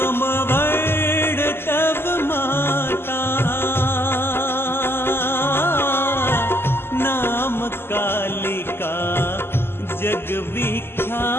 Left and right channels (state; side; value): late; right; 0.11 ms